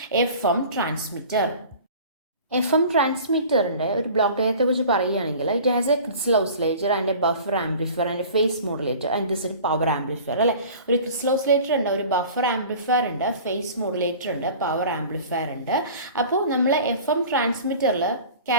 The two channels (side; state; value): both; inverted; correlation -0.43